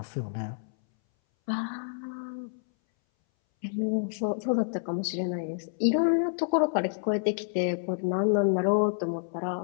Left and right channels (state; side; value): silent; right; 59 dB below the other